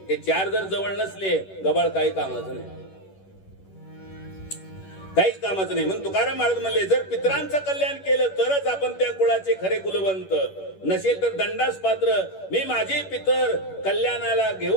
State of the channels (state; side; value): late; right; 10 ms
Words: हे 4 जर जवळ नसले, गबाळ काही कामाचं नाही, काहीच कामाचं नाही. म्हणून तुकाराम महाराज म्हणले, जर पितरांचं कल्याण केलं तरच आपण त्या कुळाचे खरे कुलवंत. नसेल तर दंडास पात्र. मी माझे पितर कल्याणाला